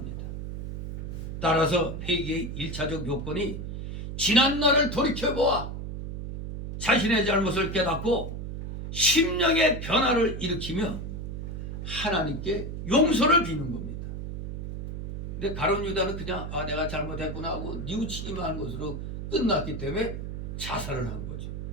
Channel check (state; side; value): noise; right; hum, 6 dB below the sound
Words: 따라서 회개의 1차적 요건이 지난 날을 돌이켜보아 자신의 잘못을 깨닫고 심령의 변화를 일으키며 하나님께 용서를 비는 겁니다. 근데 가룟 유다는 그냥 내가 잘못했구나 하고 뉘우치기만 한 것으로 끝났기 때문에 자살을 한 거죠.